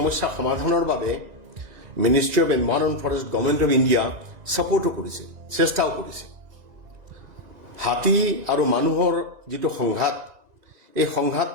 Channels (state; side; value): late; left; 2.0 ms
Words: সমাধানৰ বাবে ministry of environment forest government of India ছাপোৰ্টো কৰিছে, চেষ্টাও কৰিছে। হাতী আৰু মানুহৰ যিটো সংঘাত, এই